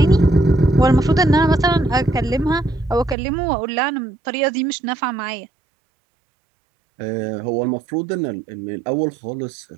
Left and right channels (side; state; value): left; drops out; at 3.2 s